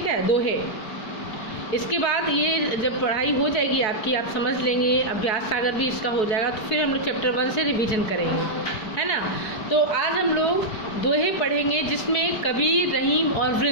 है, दोहे। इसके बाद ये जब पढ़ाई हो जाएगी आपकी, आप समझ लेंगे, अभ्यास सागर भी इसका हो जाएगा, तो फिर हम लोग चैप्टर 1 से रिवीजन करेंगे, है ना। तो आज हम लोग दोहे पढ़ेंगे जिसमें कबीर, रहीम और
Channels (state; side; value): late; right; 4.7 ms